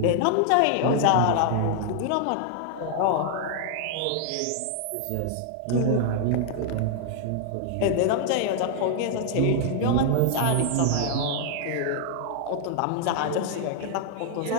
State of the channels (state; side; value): different; both; correlation 0.00